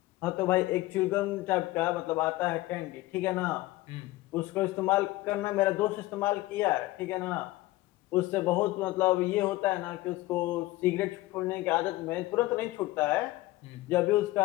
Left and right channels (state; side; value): quieter; right; 18.3 dB